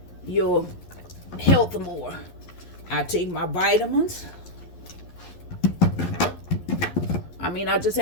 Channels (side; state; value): right; late; 11 ms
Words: your health more. I take my vitamins. I just